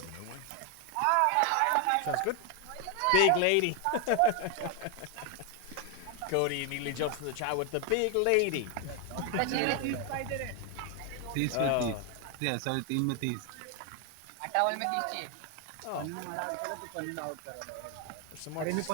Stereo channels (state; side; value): different; both; correlation 0.01